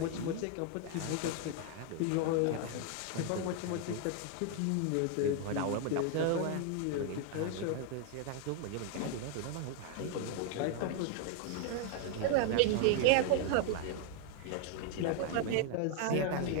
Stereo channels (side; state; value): both; different; correlation 0.00